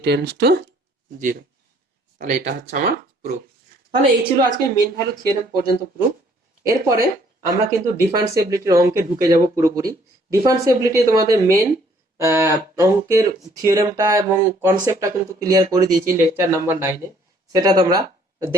tends to 0। তাহলে এটা হচ্ছে আমার প্রুফ। তাহলে এই ছিল আজকে মেইন ভ্যালু থিওরেম পর্যন্ত প্রুফ। এরপরে আমরা কিন্তু ডিফারেন্সিবিলিটির অঙ্কে ঢুকে যাব পুরোপুরি। ডিফারেন্সিবিলিটি তোমাদের মেইন অঙ্কের থিওরেমটা এবং কনসেপ্টটা কিন্তু ক্লিয়ার করে দিয়েছি লেকচার নাম্বার 9-এ, সেটা তোমরা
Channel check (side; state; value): both; normal; correlation 0.62